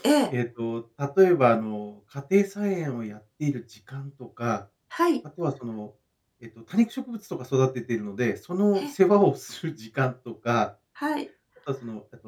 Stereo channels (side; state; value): both; identical; correlation 1.00